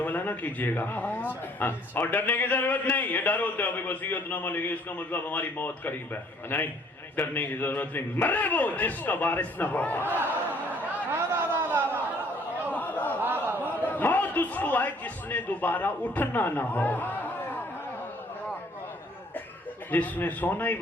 نہ کیجئے گا. اور ڈرنے کی ضرورت نہیں. یہ ڈر ہوتا ہے وصیت نامہ لکھے اس کا مطلب ہماری موت قریب ہے. نہیں، ڈرنے کی ضرورت نہیں. مرے وہ جس کا وارث نہ ہو. موت اس کو آئے جس نے دوبارہ اٹھنا نہ ہو. جس نے سونا ہی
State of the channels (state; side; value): normal; both; correlation 0.60